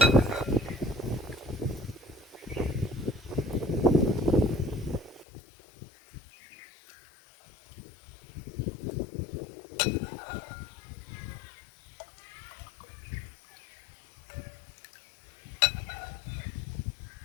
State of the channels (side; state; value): right; drops out; at 5.2 s